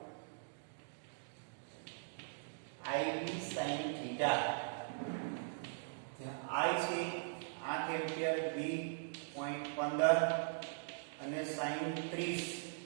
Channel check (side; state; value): left; silent; digital silence